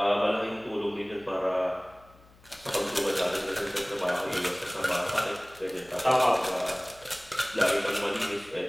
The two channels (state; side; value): noise; left; hum, 27 dB below the sound